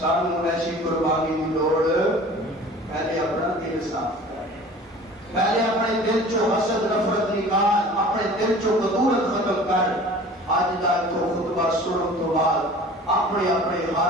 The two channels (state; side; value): normal; both; correlation 0.44